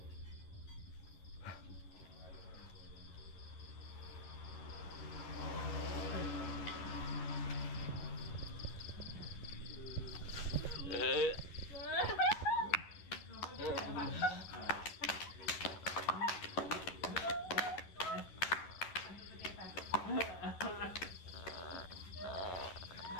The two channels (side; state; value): right; late; 11 ms